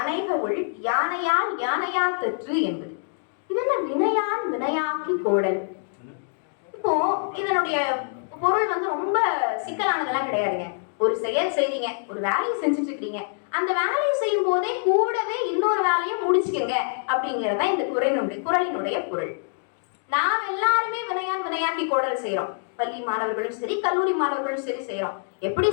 ஒள் யானையால் யானையா தற்று என்பது. இது என்ன வினையான் வினையாக்கி கோடல்? இப்போ இதனுடைய பொருள் ரொம்ப சிக்கலானதெல்லாம் கிடையாதுங்க. ஒரு செயல் செய்றீங்க, ஒரு வேலையை செஞ்சுட்டு இருக்கீங்க, அந்த வேலையை செய்யும் போதே கூடவே இன்னொரு வேலையை முடிச்சுக்கங்க அப்படிங்கறத இந்த குறளினுடைய பொருள். நாம் எல்லாருமே வினையான் வினையாக்கி கோடல் செய்யறோம். பள்ளி மாணவர்களும் சரி, கல்லூரி மாணவர்களும் சரி செய்யறோம். எப்படி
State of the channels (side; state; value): right; silent; digital silence